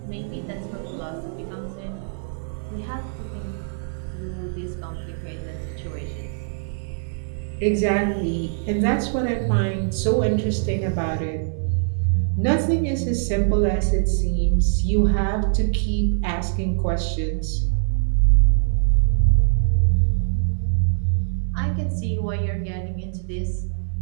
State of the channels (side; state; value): left; silent; 61 dB below the other